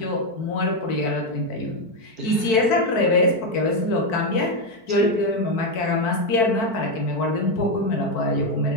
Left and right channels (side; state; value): right; late; 4.5 ms